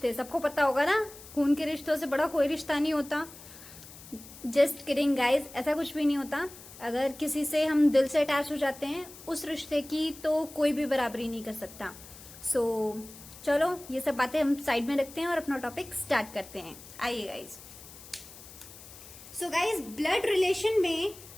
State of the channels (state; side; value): noise; left; hiss, 17 dB below the sound